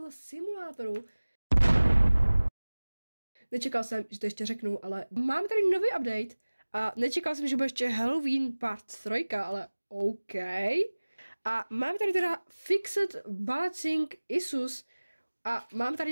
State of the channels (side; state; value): both; inverted; correlation -1.00